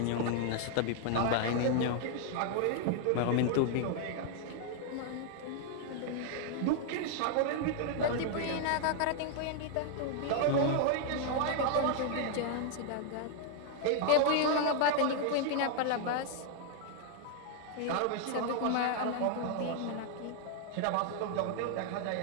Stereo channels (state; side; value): different; both; correlation 0.00